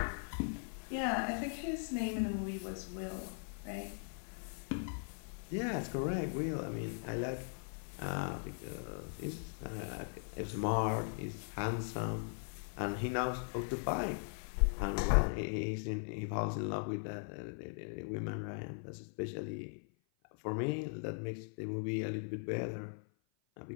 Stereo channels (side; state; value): right; silent; 51 dB below the other